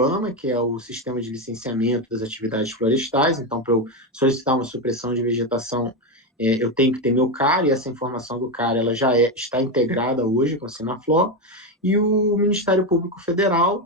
que é o sistema de licenciamento das atividades florestais. Então, para eu solicitar uma supressão de vegetação, eu tenho que ter meu CAR, e essa informação do CAR ela já está integrada hoje com o Sinaflor. E o Ministério Público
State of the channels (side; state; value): both; normal; correlation 0.11